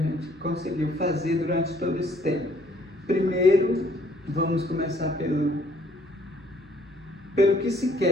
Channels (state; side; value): noise; left; hum, 29 dB below the sound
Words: conseguiu fazer durante todo esse tempo. Primeiro, vamos começar pelo que se